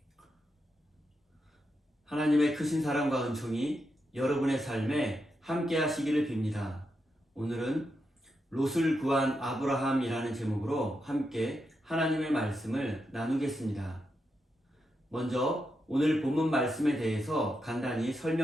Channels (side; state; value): both; normal; correlation 0.85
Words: 하나님의 크신 사랑과 은총이 여러분의 삶에 함께 하시기를 빕니다. 오늘은 롯을 구한 아브라함이라는 제목으로 함께 하나님의 말씀을 나누겠습니다. 먼저 오늘 본문 말씀에 대해서 간단히